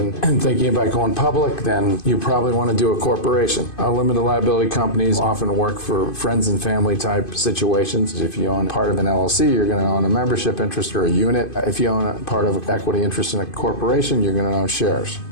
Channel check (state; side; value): late; right; 2.5 ms